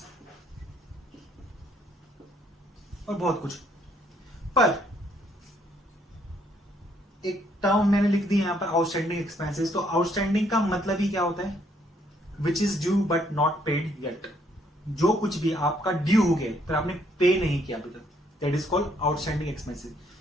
और बहुत कुछ। पर एक टर्म मैंने लिख दी यहां पर आउटस्टैंडिंग एक्सपेंसेस। तो आउटस्टैंडिंग का मतलब ही क्या होता है? Which is due but not paid yet. जो कुछ भी आपका ड्यू हो गया पर आपने पे नहीं किया अभी तक, that is called outstanding expenses.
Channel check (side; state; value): both; normal; correlation 0.69